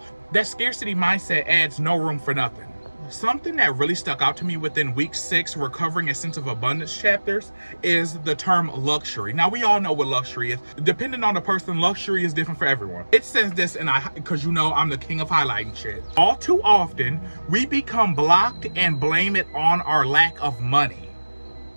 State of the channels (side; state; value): both; inverted; correlation -1.00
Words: That scarcity mindset adds no room for nothing. Something that really stuck out to me within week 6 recovering a sense of abundance chapters is the term luxury. Now we all know what luxury is. Depending on the person, luxury is different for everyone. It says this, and because you know I'm the king of highlighting shit. All too often we become blocked and blame it on our lack of money.